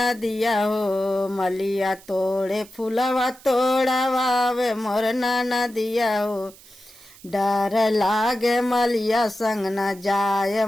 हो, मलिया तोड़े फूलवा तोड़ावे मोर नदिया हो। डर लागे मलिया संग न जाय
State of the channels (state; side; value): noise; right; hiss, 23 dB below the sound